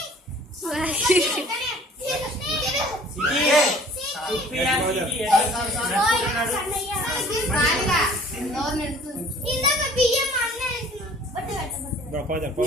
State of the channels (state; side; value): normal; both; correlation 0.51